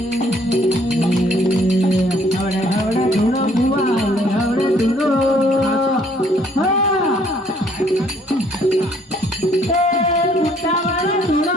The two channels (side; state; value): both; normal; correlation 0.63